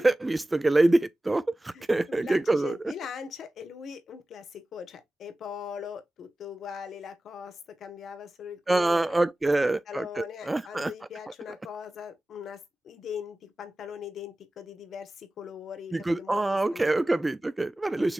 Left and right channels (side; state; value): both; normal; correlation 0.96